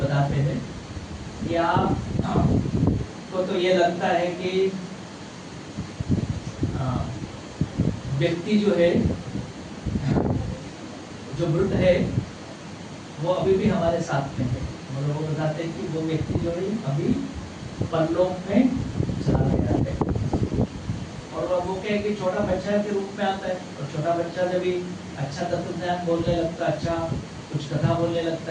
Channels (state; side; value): identical; both; correlation 1.00